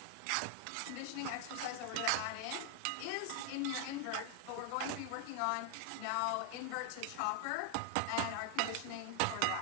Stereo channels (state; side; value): different; both; correlation 0.00